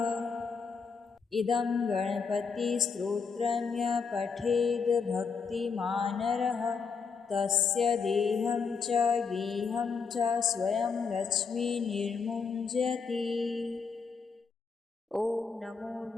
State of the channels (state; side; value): quieter; right; 5.4 dB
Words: इदं गणपतिस्तोत्रं यः पठेद् भक्तिमानरः तस्य देहं च गेहं च स्वयं लक्ष्मीर्निर्मुञ्जति। ॐ नमो